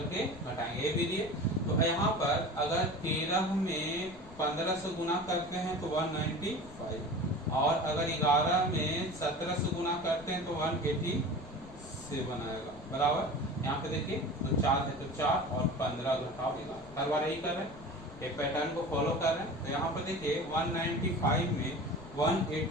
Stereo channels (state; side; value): noise; left; rumble, 18 dB below the sound